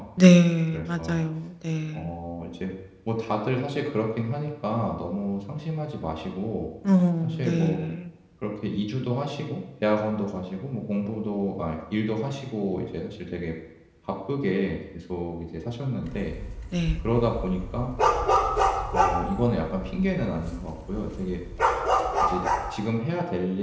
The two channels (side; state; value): both; identical; correlation 1.00